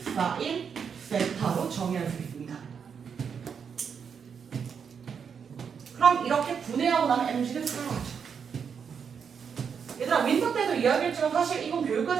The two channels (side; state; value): left; quieter; 6.8 dB